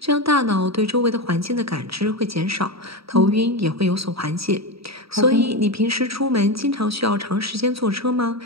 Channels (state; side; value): late; left; 0.76 ms